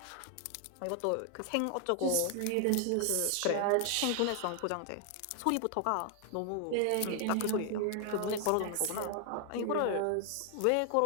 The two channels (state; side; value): different; both; correlation 0.00